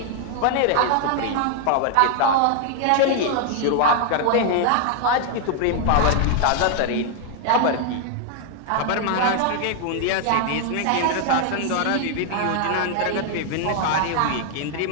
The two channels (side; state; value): both; different; correlation 0.00